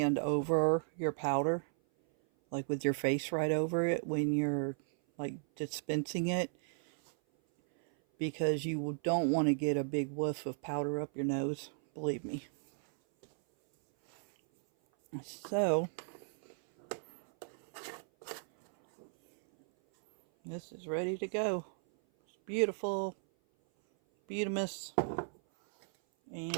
over your powder. Like with your face right over it when you're like dispensing it. Because you don't want to get a big whiff of powder up your nose. Believe me. So, this is ready to go. It's beautiful. Beautimous.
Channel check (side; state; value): left; silent; 54 dB below the other